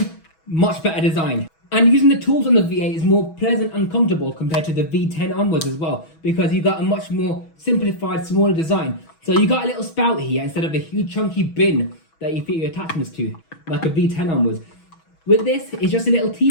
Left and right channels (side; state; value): right; late; 6.2 ms